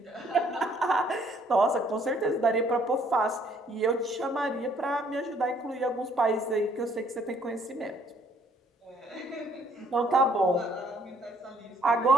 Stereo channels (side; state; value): both; normal; correlation 0.63